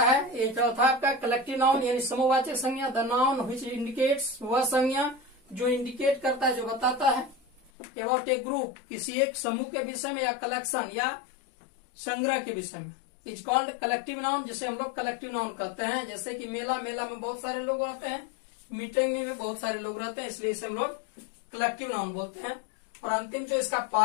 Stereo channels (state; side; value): drops out; right; at 7.7 s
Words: ये चौथा आपका कलेक्टिव नाउन यानी समूहवाचक संज्ञा, द नाउन व्हिच इंडिकेट्स, वह संज्ञा जो इंडिकेट करता है, जो बताता है, अबाउट ए ग्रुप, किसी एक समूह के विषय में, या कलेक्शन या संग्रह के विषय में, इज कॉल्ड कलेक्टिव नाउन, जिसे हम लोग कलेक्टिव नाउन कहते हैं। जैसे कि मेला, मेला में बहुत सारे लोग रहते हैं, मीटिंग में भी बहुत सारे लोग रहते हैं, इसलिए इसे हम लोग कलेक्टिव नाउन बोलते हैं। और अंतिम जो इसका